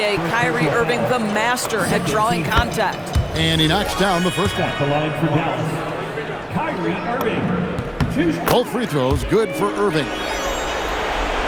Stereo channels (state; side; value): identical; both; correlation 1.00